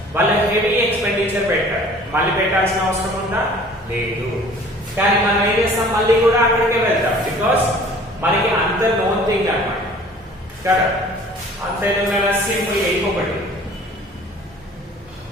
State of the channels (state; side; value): normal; both; correlation 0.50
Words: వాళ్ళు హెవీ ఎక్స్పెండిచర్ పెట్టారు, మళ్ళీ పెట్టాల్సిన అవసరం ఉందా, లేదు. కానీ మనం ఏం చేస్తాం, మళ్ళీ కూడా అక్కడికే వెళ్తాం, బికాస్ మనకి అంత నోన్ థింగ్ అన్నమాట కదా. అంతే సింపుల్ గా ఇంకొకటి